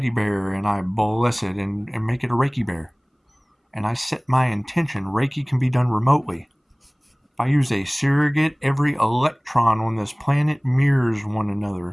bear and I bless it and make it a Reiki bear, and I set my intention, Reiki can be done remotely. If I use a surrogate, every electron on this planet mirrors one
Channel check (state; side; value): identical; both; correlation 1.00